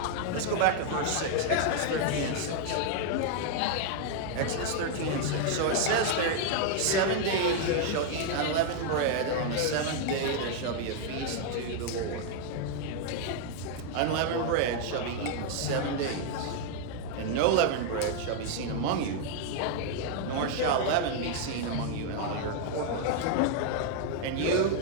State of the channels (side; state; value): both; different; correlation 0.00